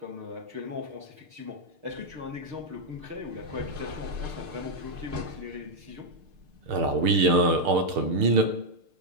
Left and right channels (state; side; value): late; left; 6.6 ms